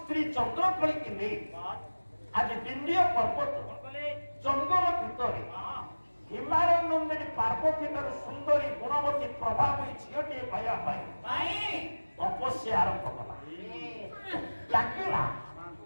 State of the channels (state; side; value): inverted; both; correlation -1.00